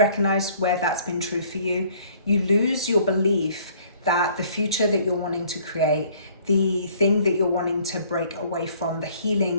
where that's been true for you? You lose your belief that the future that you're wanting to create, the thing that you're wanting to break away from, the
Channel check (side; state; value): both; inverted; correlation -0.58